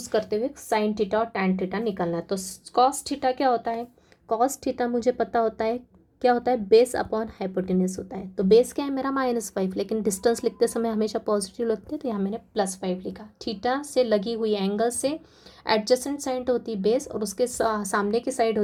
करते हुए साइन थीटा और टैन थीटा निकालना है। तो कॉस थीटा क्या होता है, कॉस थीटा मुझे पता होता है क्या होता है, बेस अपॉन हाइपोटेन्यूज होता है। तो बेस क्या है मेरा -5, लेकिन डिस्टेंस लिखते समय हमेशा पॉजिटिव लिखते हैं, तो यहाँ मैंने +5 लिखा। थीटा से लगी हुई एंगल से एडजेसेंट साइड होती है बेस, और उसके सामने की साइड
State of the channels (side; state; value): both; identical; correlation 1.00